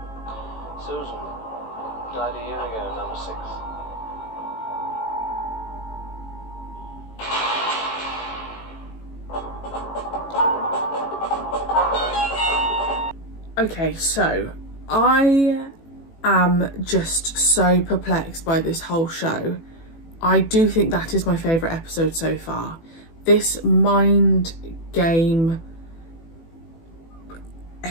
Susan died a year ago, number 6. Okay, so I am just so perplexed by this whole show. I do think that is my favourite episode so far. This mind game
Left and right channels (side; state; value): right; late; 18 ms